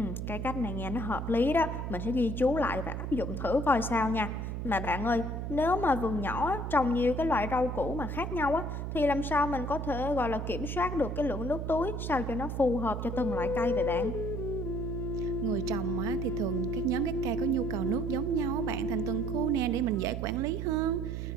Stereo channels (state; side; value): noise; right; hum, 4 dB below the sound